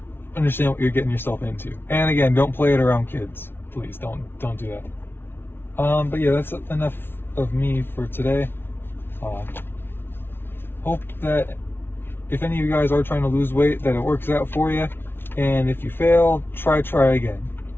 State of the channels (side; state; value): right; late; 0.11 ms